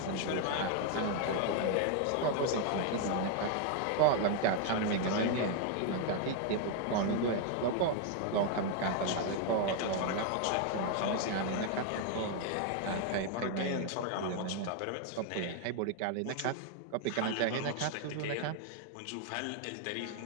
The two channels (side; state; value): both; different; correlation 0.00